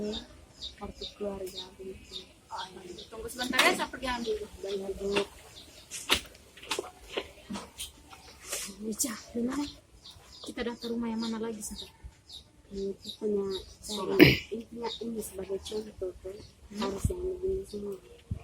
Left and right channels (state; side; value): identical; both; correlation 1.00